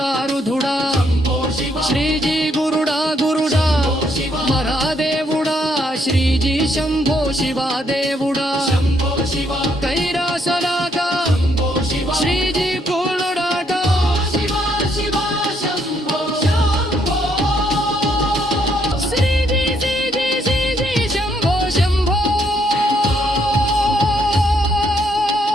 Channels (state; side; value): normal; both; correlation 0.72